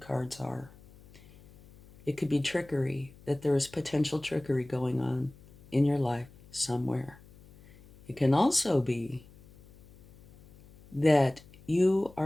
are. It could be trickery, that there is potential trickery going on in your life somewhere. It can also be that you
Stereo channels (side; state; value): left; noise; hum, 24 dB below the sound